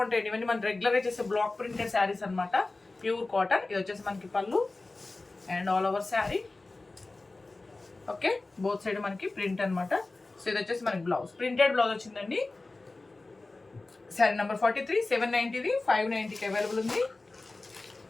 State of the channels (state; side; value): quieter; right; 3.3 dB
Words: ఇవన్నీ మనం రెగ్యులర్గా చేసే బ్లాక్ ప్రింటెడ్ శారీస్ అనమాట. Pure cotton. ఇది వచ్చేసి మనకి పళ్ళు and all over sari. Okay, both side మనకి ప్రింట్ అనమాట. సో ఇది వచ్చేసి మనకి బ్లౌజ్, ప్రింటెడ్ బ్లౌజ్ వచ్చిందండి. శారీ నెంబర్ 43, 790ది, 590కి అవైలబుల్ ఉంది.